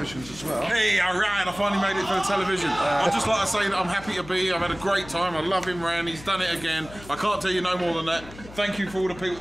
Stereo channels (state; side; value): noise; left; hum, 17 dB below the sound